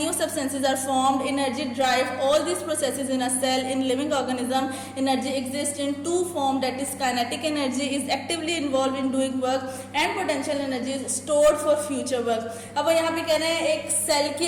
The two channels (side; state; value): both; identical; correlation 1.00